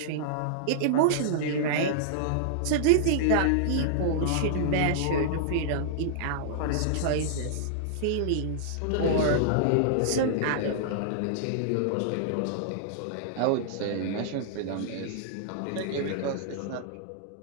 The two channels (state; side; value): different; both; correlation -0.01